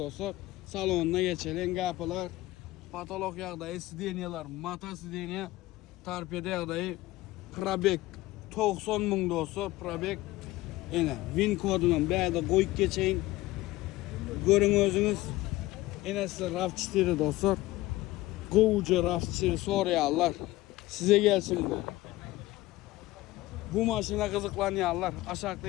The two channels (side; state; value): right; quieter; 18.1 dB